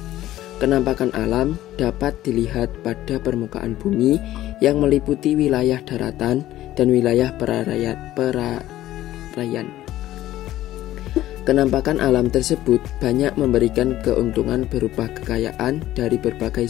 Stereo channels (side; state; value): right; quieter; 14.4 dB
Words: Kenampakan alam dapat dilihat pada permukaan bumi yang meliputi wilayah daratan dan wilayah perairan. Kenampakan alam tersebut banyak memberikan keuntungan berupa kekayaan dari berbagai